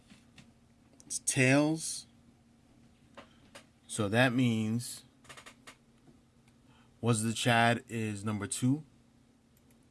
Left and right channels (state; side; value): identical; both; correlation 1.00